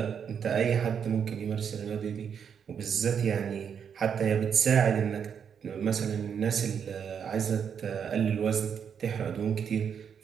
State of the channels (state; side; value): quieter; left; 7.5 dB